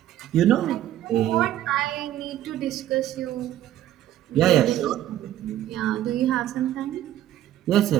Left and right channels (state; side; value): quieter; left; 12.7 dB